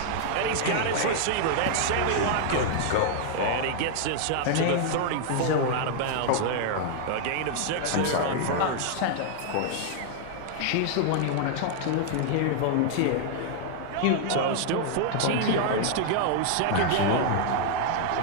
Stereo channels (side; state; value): both; different; correlation -0.01